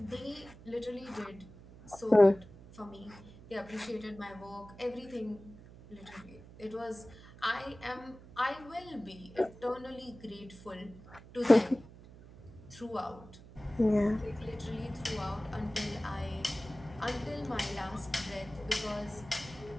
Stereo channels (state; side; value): noise; right; hum, 19 dB below the sound